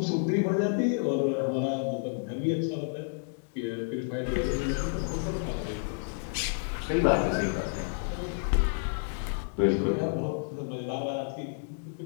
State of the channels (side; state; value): right; silent; digital silence